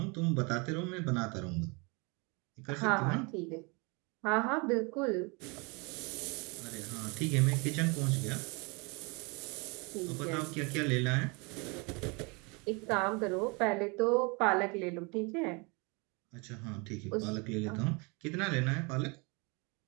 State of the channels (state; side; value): quieter; left; 29.9 dB